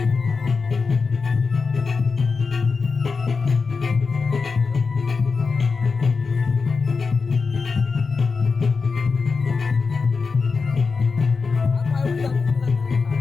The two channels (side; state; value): right; quieter; 4.7 dB